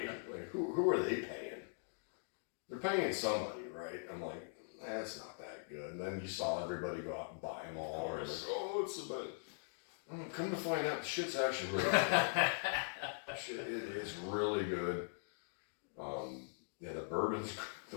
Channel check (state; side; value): silent; right; digital silence